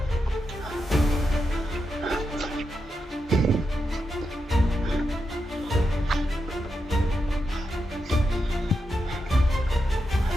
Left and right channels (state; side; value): normal; both; correlation 0.86